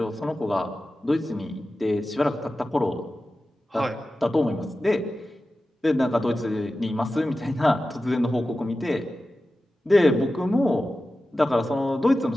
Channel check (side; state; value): both; normal; correlation 0.94